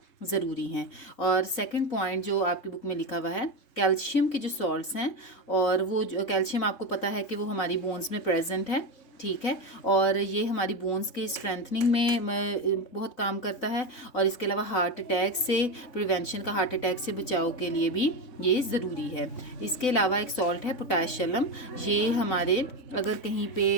ज़रूरी हैं। और सेकंड पॉइंट जो आपकी बुक में लिखा हुआ है, कैल्शियम के जो सॉल्ट्स हैं, और वो जो कैल्शियम आपको पता है कि वो हमारी बोन्स में प्रेजेंट है, ठीक है, और ये हमारी बोन्स के स्ट्रेंथनिंग में बहुत काम करता है। और इसके अलावा हार्ट अटैक से प्रिवेंशन का, हार्ट अटैक से बचाव के लिए भी ये ज़रूरी है। इसके अलावा एक सॉल्ट है पोटाशियम, ये हमारे अगर कहीं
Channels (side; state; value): right; late; 4.0 ms